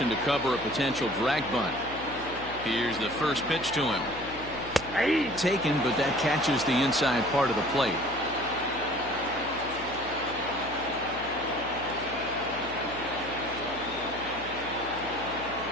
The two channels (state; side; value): noise; left; hum, 15 dB below the sound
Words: to cover a potential drag bunt. Here's the first pitch to him. Taken, but that catches the inside part of the plate.